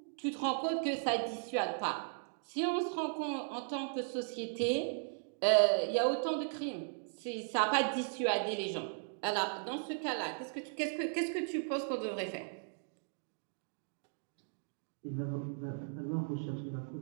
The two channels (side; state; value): left; silent; digital silence